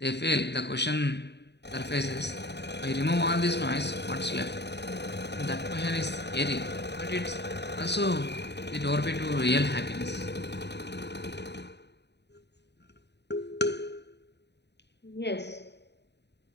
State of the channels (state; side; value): late; right; 0.50 ms